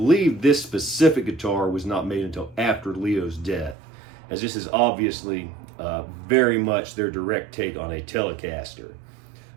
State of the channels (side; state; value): left; drops out; at 3.8 s